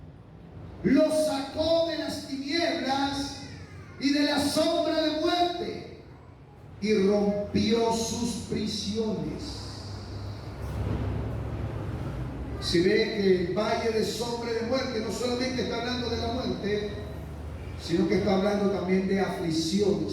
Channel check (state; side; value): identical; both; correlation 1.00